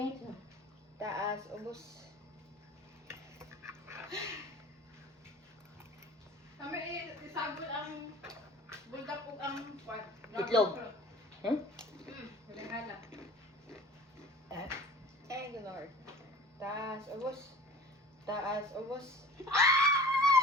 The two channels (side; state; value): both; normal; correlation 0.43